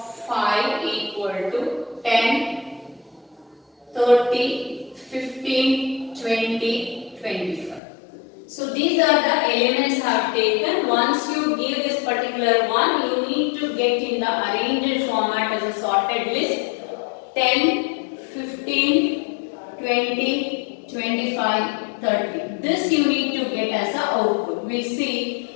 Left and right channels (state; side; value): drops out; right; at 7.8 s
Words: 5 equal to 10, 30, 15, 20, 25. So these are the elements I have taken. Once you give this particular one, you need to get in the arranged format as a sorted list. 10, 15, 20, 25, 30. This you need to get as an output. We'll